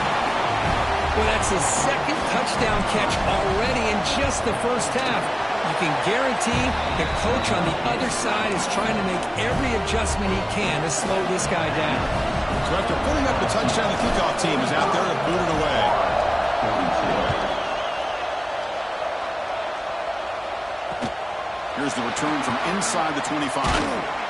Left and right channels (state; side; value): identical; both; correlation 1.00